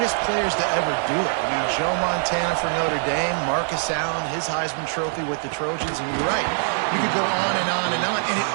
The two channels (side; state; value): left; silent; 55 dB below the other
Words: players to ever do it. I mean, Joe Montana for Notre Dame, Marcus Allen, his Heisman Trophy with the Trojans, and you're right. You could go on and on and on, and it